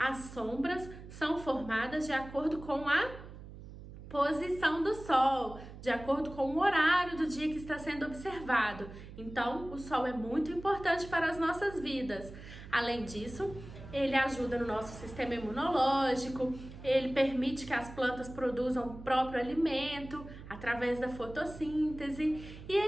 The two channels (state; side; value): noise; right; hum, 14 dB below the sound